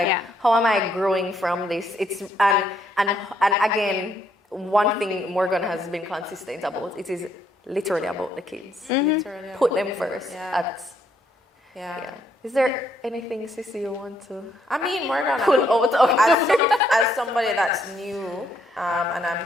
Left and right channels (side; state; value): both; normal; correlation 0.72